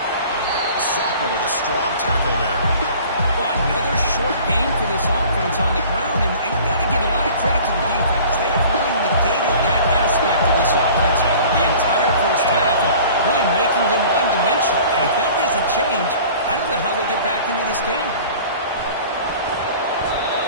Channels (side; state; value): both; inverted; correlation -0.46